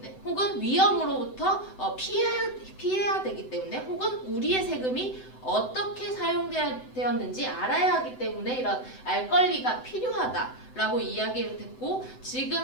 혹은 위험으로부터 피해야 되기 때문에, 혹은 우리의 세금이 어떻게 사용되었는지 알아야 하기 때문에 이런 알 권리가 필요하다라고 이야기를 했고, 지금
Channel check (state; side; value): late; right; 7.9 ms